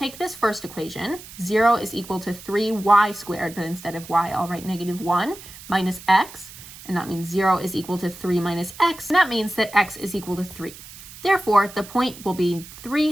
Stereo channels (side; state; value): right; noise; hiss, 17 dB below the sound